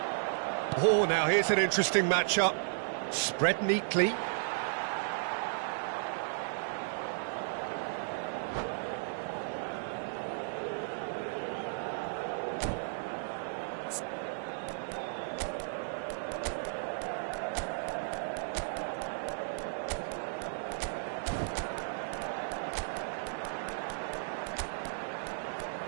Oh, now here's an interesting matchup. Spread neatly.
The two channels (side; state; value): left; silent; digital silence